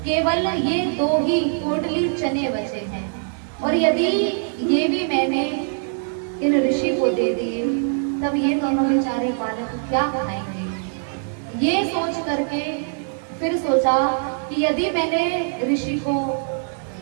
केवल ये 2 ही पोटली चने बचे हैं, और यदि ये भी मैंने इन ऋषि को दे दिए तब ये दोनों बेचारे बालक क्या खाएंगे। ये सोच करके फिर सोचा कि यदि मैंने ऋषि को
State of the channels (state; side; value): silent; left; 64 dB below the other